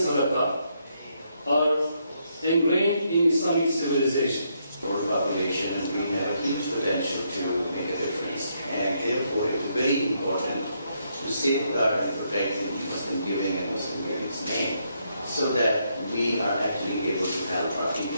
are ingrained in Islamic civilization. For the population, and we have a huge potential to make a difference, and therefore it is very important to safeguard and protect the Muslim giving and Muslim giving's name, so that we are actually able to help our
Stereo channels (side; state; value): both; inverted; correlation -0.76